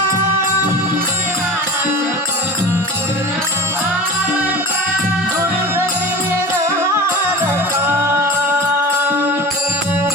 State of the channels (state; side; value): normal; both; correlation 0.34